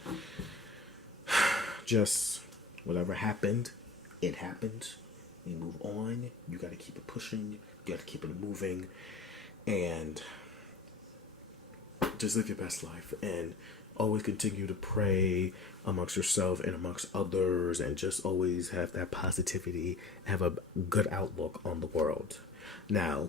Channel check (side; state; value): right; quieter; 4.0 dB